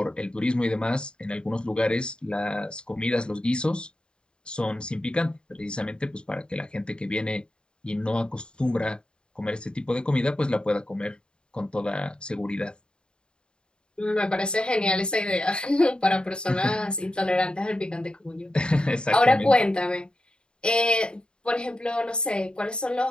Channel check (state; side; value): late; right; 0.051 ms